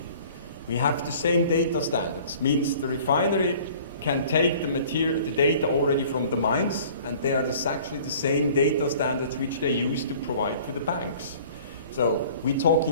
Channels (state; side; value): inverted; both; correlation -0.50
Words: We have the same data standards, means the refinery can take the data already from the mines, and they are actually the same data standards which they use to provide to the banks. So we're